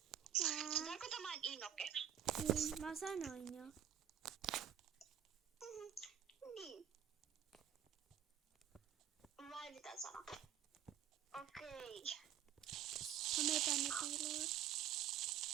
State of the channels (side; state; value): left; quieter; 10.0 dB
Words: Onko tämä Inoke? Niin, mä sanoin jo. Niin. Vai mitä sanoa? Okei. Mä menen tänne piiloon.